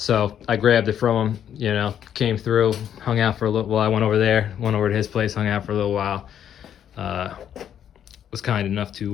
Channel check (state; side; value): quieter; right; 9.5 dB